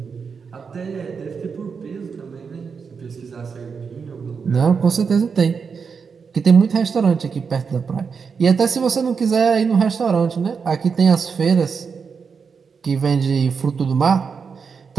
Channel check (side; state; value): left; quieter; 5.8 dB